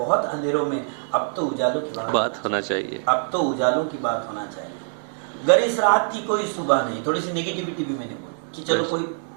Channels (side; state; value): left; silent; 63 dB below the other